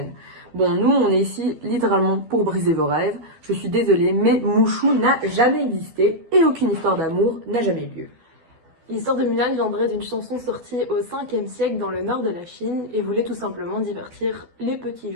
Bon, nous on est ici littéralement pour briser vos rêves. Je suis désolée, mais Mouchou n'a jamais existé et aucune histoire d'amour n'a jamais eu lieu. L'histoire de Mulan viendrait d'une chanson sortie au 5e siècle dans le nord de la Chine et voulait tout simplement divertir les petits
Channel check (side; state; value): left; late; 12 ms